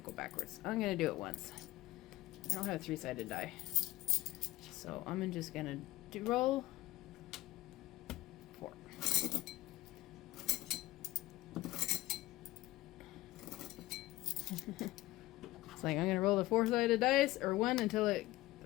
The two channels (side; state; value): right; quieter; 17.5 dB